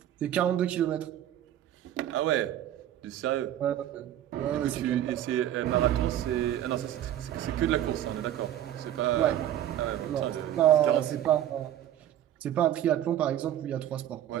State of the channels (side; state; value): left; quieter; 11.8 dB